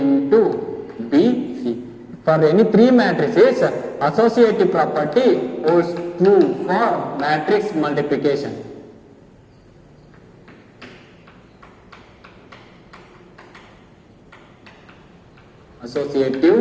B, C. For any three matrices, associative property holds true for matrix multiplication.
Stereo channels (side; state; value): both; identical; correlation 1.00